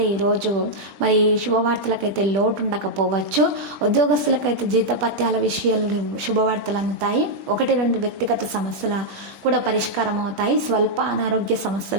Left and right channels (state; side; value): late; left; 21 ms